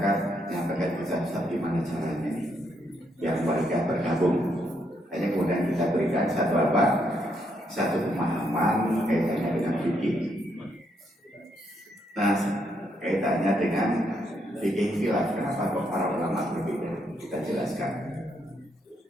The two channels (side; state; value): both; normal; correlation 0.76